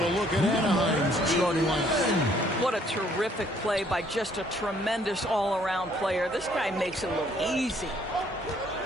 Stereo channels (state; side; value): normal; both; correlation 0.64